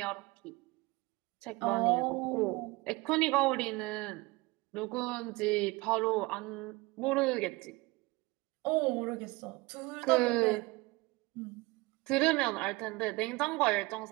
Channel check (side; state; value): left; quieter; 23.1 dB